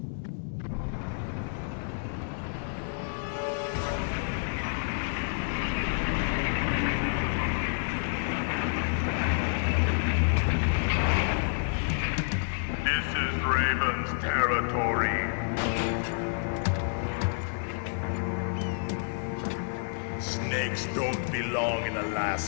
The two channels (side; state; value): right; silent; digital silence